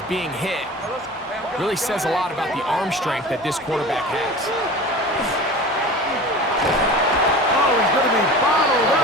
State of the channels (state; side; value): normal; both; correlation 0.36